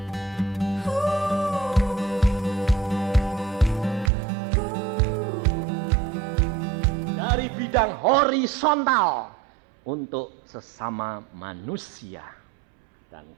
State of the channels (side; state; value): left; drops out; at 4.1 s